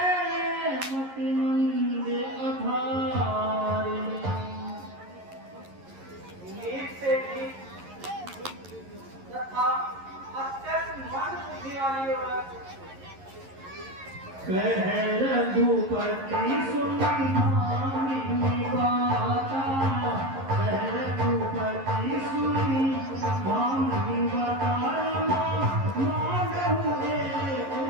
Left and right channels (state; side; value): late; left; 11 ms